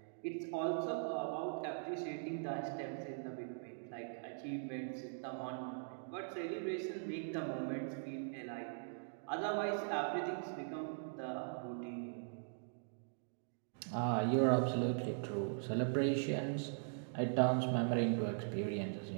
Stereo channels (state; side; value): silent; left; digital silence